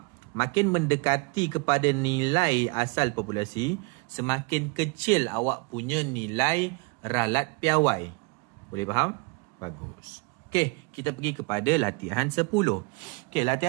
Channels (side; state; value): left; quieter; 29.4 dB